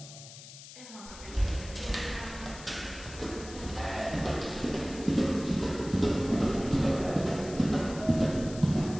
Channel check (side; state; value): left; noise; hiss, 15 dB below the sound